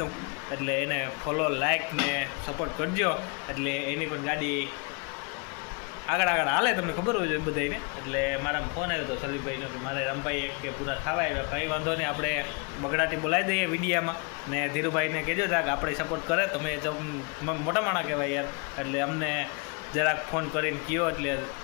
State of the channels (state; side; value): quieter; right; 32.9 dB